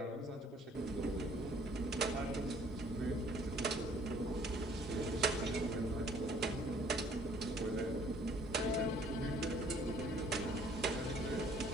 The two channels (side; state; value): both; normal; correlation 0.58